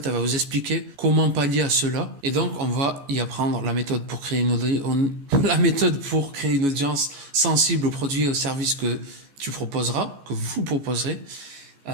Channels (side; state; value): left; late; 14 ms